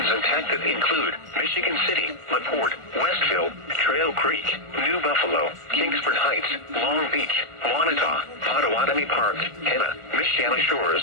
impacted include Michigan City, LaPorte, Westville, Trail Creek, New Buffalo, Kingsford Heights, Long Beach, Wanata, Potawatomi Park, Henna, Michiana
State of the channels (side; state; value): left; late; 1.4 ms